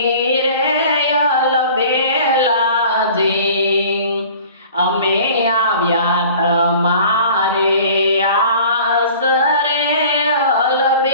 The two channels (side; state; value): both; inverted; correlation -0.46